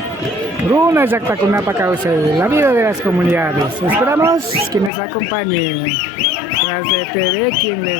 Runa Yactacunapa Cauce, la vida de las comunidades. Esperamos que nos acompañen. Tras de TV, quien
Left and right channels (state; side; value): drops out; right; at 4.9 s